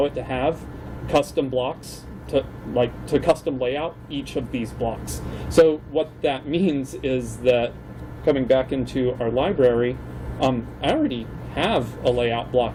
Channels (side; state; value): both; identical; correlation 1.00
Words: it to have custom blocks to custom layout each of these blocks. So what that means is that, coming back into our library, I already have a layout